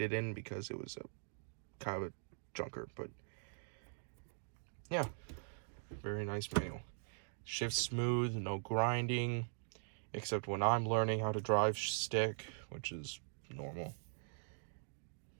in because it was a kind of a junker, but yeah, very nice manual. Shifts smooth, no grinding, except when I'm learning how to drive stick, which is normal.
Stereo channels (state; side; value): silent; left; digital silence